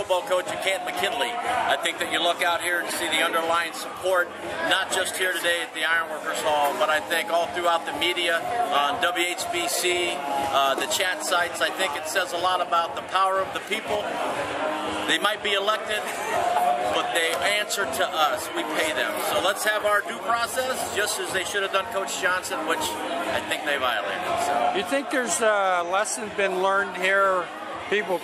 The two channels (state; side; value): identical; both; correlation 1.00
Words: coach at Canton-McKinley. I think that you look out here and see the underlying support, not just here today at the Ironworkers Hall, but I think all throughout the media, on WHBC, the chat sites. I think it says a lot about the power of the people. They might be elected, but they answer to us. We pay them. So let's have our due process, just as they should have done Coach Johnson, which I think they violated. So. You think there's a lesson been learned here, people